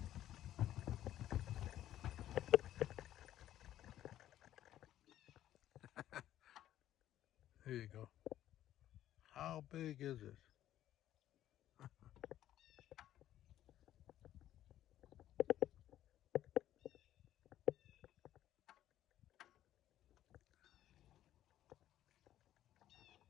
There you go. How big is it?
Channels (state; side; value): quieter; right; 12.5 dB